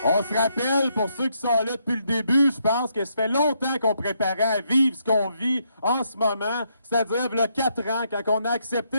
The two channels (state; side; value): inverted; both; correlation -0.76